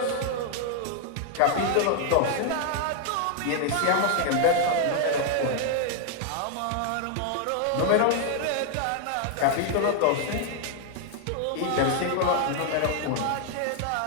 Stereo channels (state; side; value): different; both; correlation 0.00